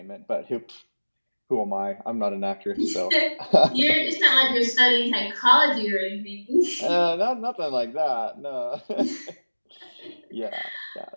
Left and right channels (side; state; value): both; inverted; correlation -1.00